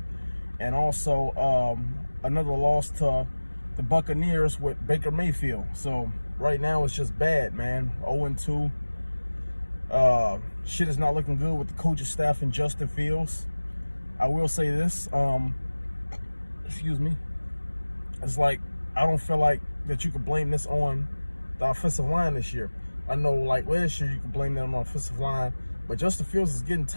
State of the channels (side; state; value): both; inverted; correlation -1.00